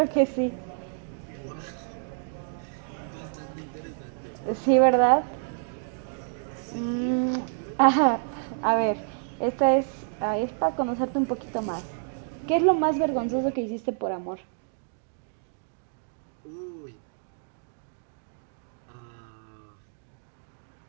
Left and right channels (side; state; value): left; silent; digital silence